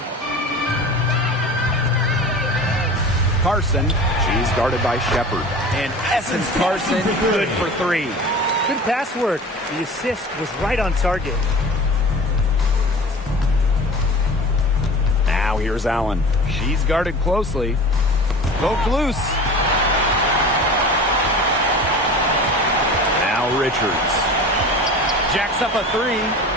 Carson. She's guarded by Shepard. And Essence Carson, good for three. Good pass work. The assist was right on target. Now here's Allen. She's guarded closely. Poked loose. Now Richards. Jacks up a three.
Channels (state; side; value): normal; both; correlation 0.38